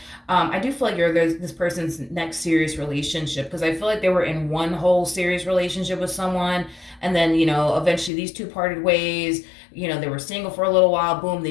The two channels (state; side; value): drops out; right; at 8.1 s